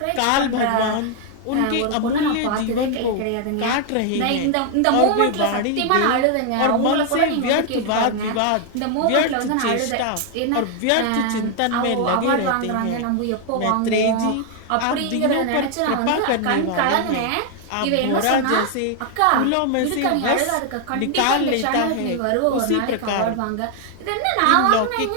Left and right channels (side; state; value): both; different; correlation 0.00